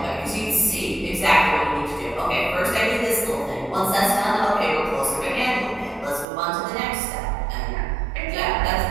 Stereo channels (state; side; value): drops out; left; at 6.2 s